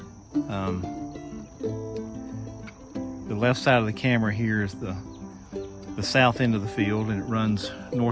The left side of the camera here is the south end of the field, and it runs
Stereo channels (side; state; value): both; identical; correlation 1.00